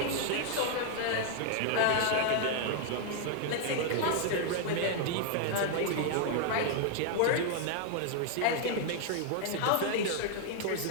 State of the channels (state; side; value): different; both; correlation 0.00